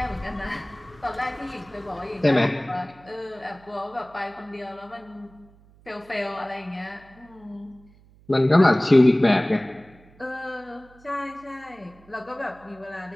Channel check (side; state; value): right; noise; hum, 27 dB below the sound